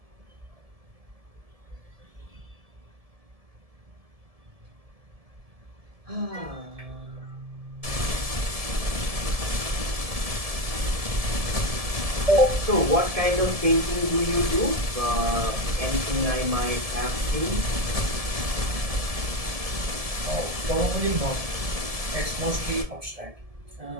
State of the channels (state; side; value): late; left; 1.7 ms